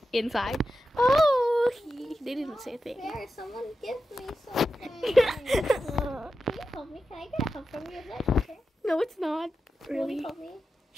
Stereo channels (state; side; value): normal; both; correlation 0.91